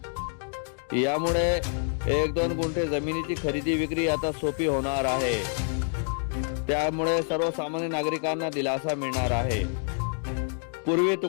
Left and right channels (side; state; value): right; silent; 57 dB below the other